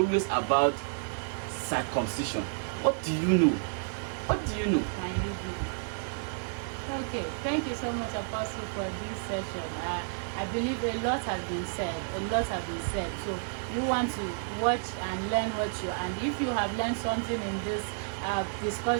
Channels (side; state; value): left; silent; digital silence